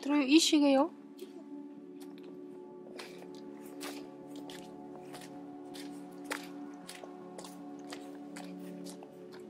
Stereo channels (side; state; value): both; identical; correlation 1.00